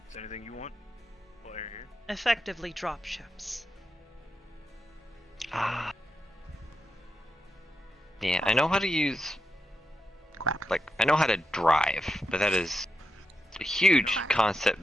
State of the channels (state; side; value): normal; both; correlation 0.86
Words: there anything you want while you're here? Effectively drop ships. Ah. Yeah, I know how to use. Quack. Like, I know how to drive, but that is a huge